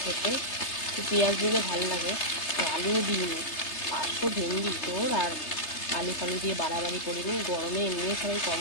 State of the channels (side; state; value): right; late; 3.3 ms